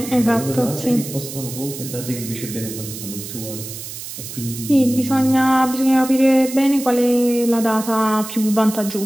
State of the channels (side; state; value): right; noise; hiss, 10 dB below the sound